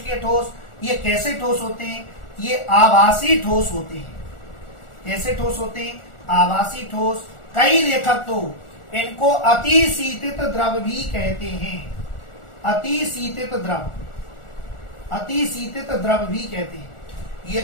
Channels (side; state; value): right; late; 1.4 ms